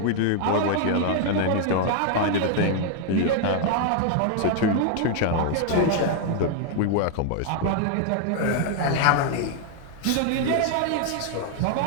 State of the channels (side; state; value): both; different; correlation 0.00